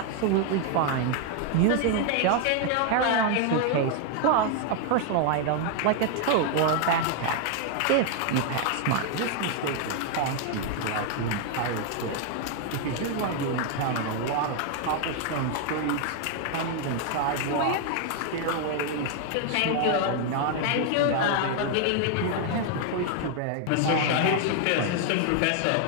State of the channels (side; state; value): both; different; correlation 0.00